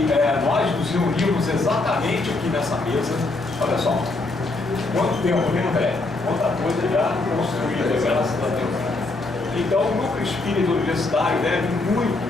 nós nos reunimos exatamente aqui nessa mesa. Olha só, quanto tempo, né, André? Quanta coisa já construída, graças a Deus. Então, o Núcleo Espírita Universitário deve muito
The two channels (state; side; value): quieter; right; 3.2 dB